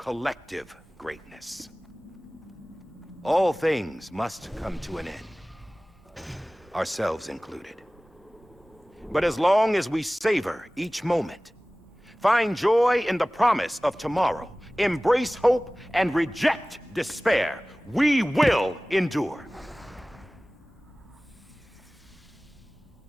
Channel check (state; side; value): normal; both; correlation 0.98